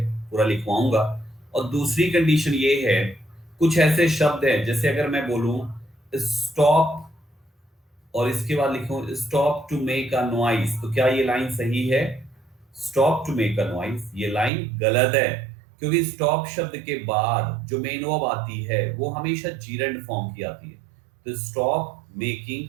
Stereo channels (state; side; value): drops out; left; at 14.5 s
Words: पूरा लिखवाऊंगा। और दूसरी कंडीशन ये है, कुछ ऐसे शब्द हैं जैसे अगर मैं बोलूं स्टॉप और इसके बाद लिखूं stop to make a noise, तो क्या ये लाइन सही है? Stop to make a noise, ये लाइन गलत है, क्योंकि स्टॉप शब्द के बाद जो मेन वर्ब आती है वो हमेशा जीरेंड फॉर्म की आती है। तो स्टॉप मेकिंग